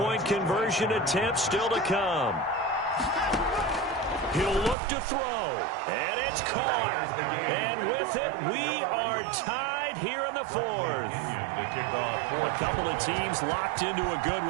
conversion attempt still to come. He'll look to throw, and it's caught. And with it, we are tied here in the 4th. A couple of teams locked into a good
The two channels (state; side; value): drops out; left; at 4.8 s